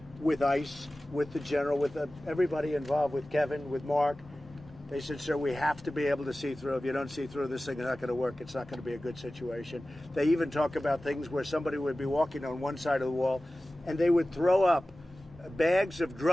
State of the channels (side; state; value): both; normal; correlation 0.96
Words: with ICE, with the general, with everybody involved, with Kevin, with Mark, they said, sir, we have to be able to see through. If you don't see through, this thing is not going to work. It's not going to be a good situation. They even talk about things where somebody would be walking on one side of the wall, and they would throw up bags of